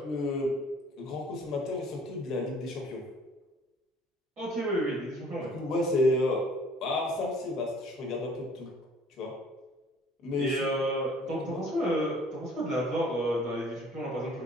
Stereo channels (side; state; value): both; normal; correlation 0.54